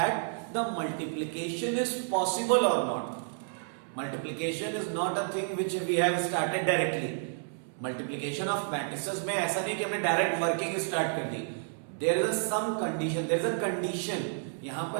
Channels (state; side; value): silent; left; 57 dB below the other